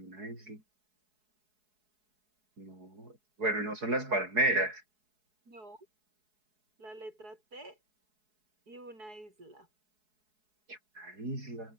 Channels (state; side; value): late; left; 4.7 ms